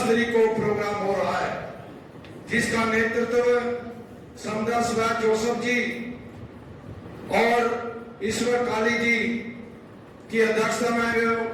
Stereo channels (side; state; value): both; identical; correlation 1.00